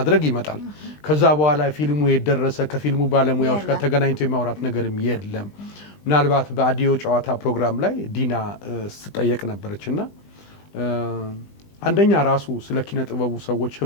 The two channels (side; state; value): right; late; 20 ms